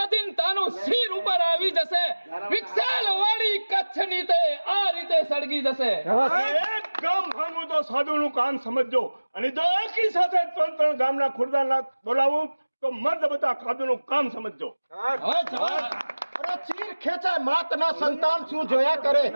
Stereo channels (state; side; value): inverted; both; correlation -1.00